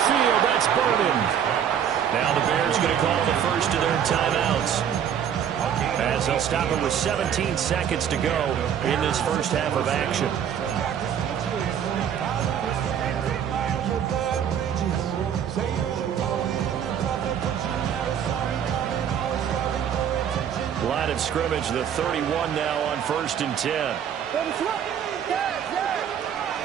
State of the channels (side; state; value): left; quieter; 8.8 dB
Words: field, that's Burden. Now the Bears going to call the first of their timeouts, as they'll stop it with 17 seconds to go in this first half of action. Line of scrimmage, the 31 now on 1st and 10.